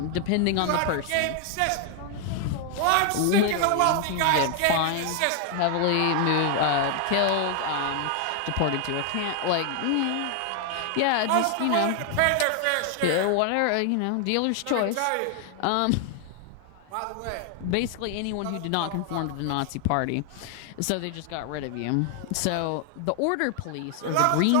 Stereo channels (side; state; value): both; different; correlation 0.00